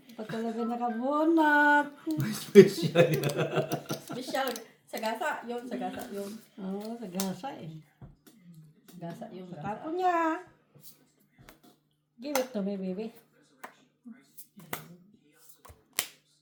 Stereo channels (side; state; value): both; identical; correlation 1.00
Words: Pa talaga nakabunot. Special. Sagasa, yun, sagasa, yun. Oo, sa gasa eh. Gasa yung gasa. Tapon niya. Give it to me, baby.